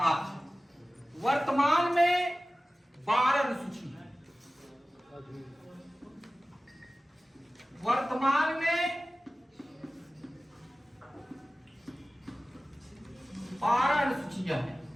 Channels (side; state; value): both; normal; correlation 0.96